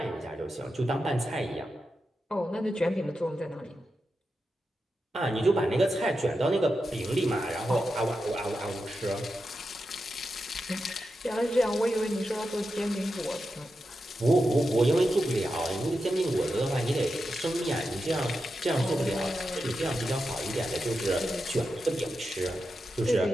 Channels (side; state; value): both; normal; correlation 0.89